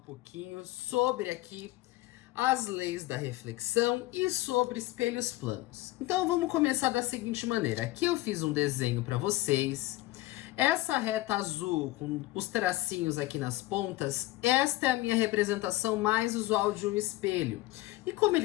pouquinho sobre aqui as leis da reflexão e sobre espelhos planos. Então vamos começar da seguinte maneira. Aqui eu fiz um desenho para vocês. Essa reta azul com os tracinhos aqui nas pontas, esta é a minha representação mais usual de um espelho. E como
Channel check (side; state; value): right; quieter; 18.2 dB